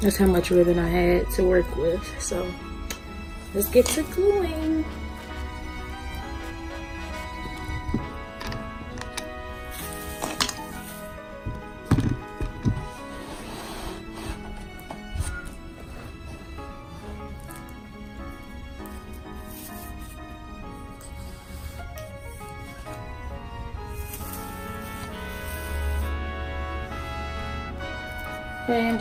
much ribbon I had to work with. So let's get to gluing. Okay, I'm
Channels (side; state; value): both; identical; correlation 1.00